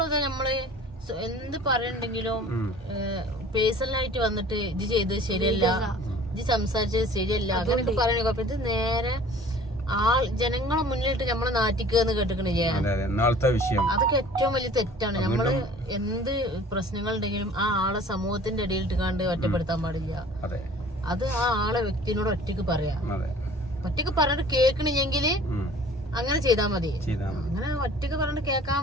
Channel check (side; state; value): both; normal; correlation 0.48